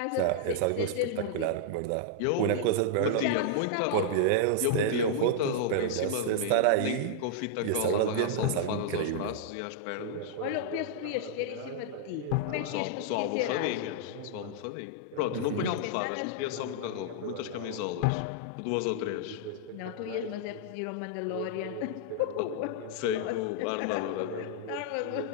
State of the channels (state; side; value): different; both; correlation -0.01